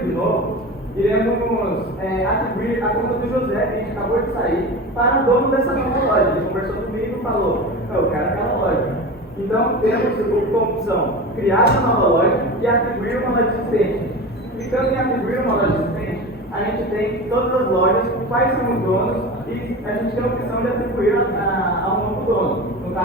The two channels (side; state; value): both; normal; correlation 0.29